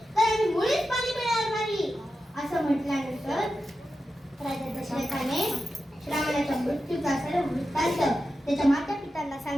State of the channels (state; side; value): normal; both; correlation 0.91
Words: तर आम्ही मुळीच पाणी पिणार नाही असं म्हटल्यानंतर राजा दशरथाने श्रावणाच्या मृत्यूचा सर्व वृत्तांत त्याच्या माता पिता लोकांना